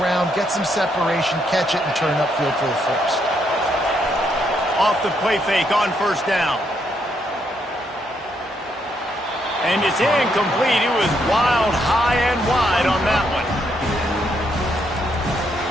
ground, get some separation, catch it, and turn upfield for the first. Off the play fake on first down. And it's incomplete. It was wild, high and wide on that one.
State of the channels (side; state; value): both; normal; correlation 0.75